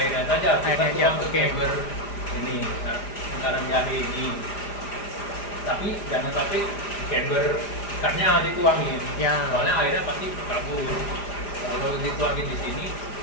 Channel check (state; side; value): late; right; 4.9 ms